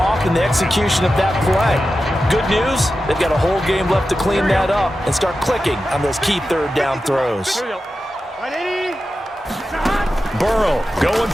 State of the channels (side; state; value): both; normal; correlation 0.92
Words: in the execution of that play. Good news, they've got a whole game left to clean that up and start clicking on those key 3rd down throws. Burrow going